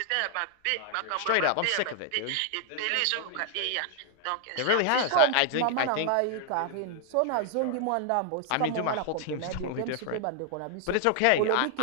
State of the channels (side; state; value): both; different; correlation 0.00